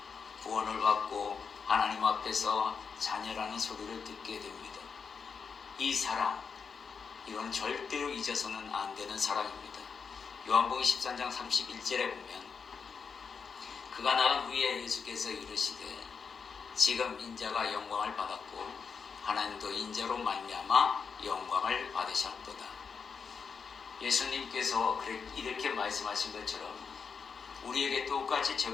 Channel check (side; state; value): right; quieter; 5.8 dB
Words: 구원을 받고 하나님 앞에서 자녀라는 소리를 듣게 됩니다. 이 사랑, 이건 절대로 잊어서는 안 되는 사랑입니다. 요한복음 13장 31절에 보면 그가 나간 후에 예수께서 이르시되 지금 인자가 영광을 받았고 하나님도 인자로 말미암아 영광을 받으셨도다. 예수님께서 이렇게 말씀하신 것처럼 우리에게 똑같이